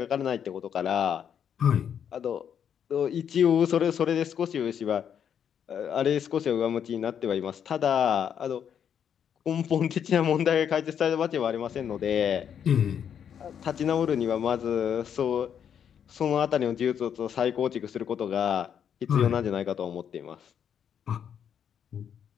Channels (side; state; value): right; quieter; 8.4 dB